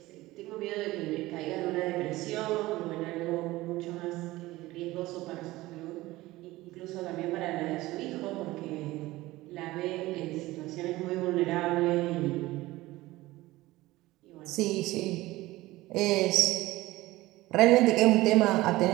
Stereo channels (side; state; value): left; quieter; 18.4 dB